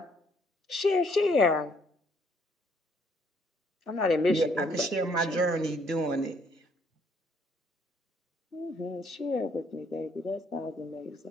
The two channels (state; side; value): normal; both; correlation 0.66